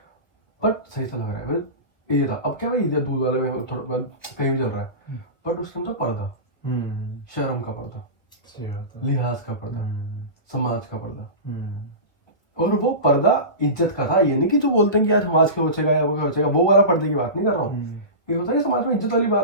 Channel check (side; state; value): right; late; 1.4 ms